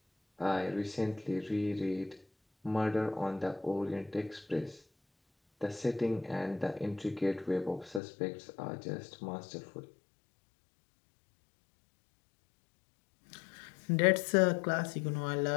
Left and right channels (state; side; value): drops out; right; at 8.0 s